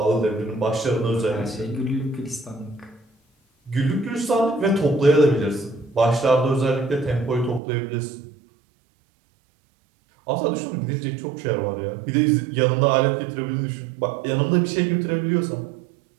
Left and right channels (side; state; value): left; drops out; at 7.6 s